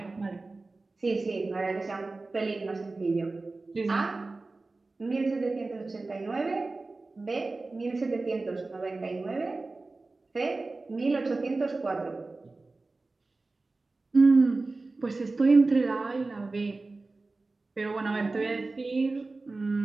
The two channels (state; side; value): quieter; left; 3.4 dB